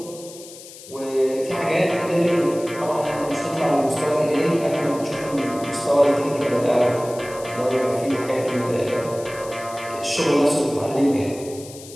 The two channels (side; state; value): left; noise; hiss, 17 dB below the sound